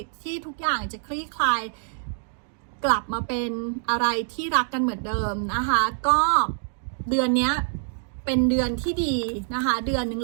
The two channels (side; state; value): left; silent; digital silence